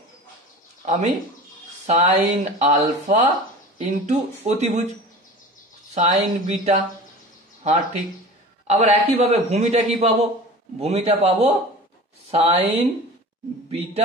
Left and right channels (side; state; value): both; normal; correlation 0.37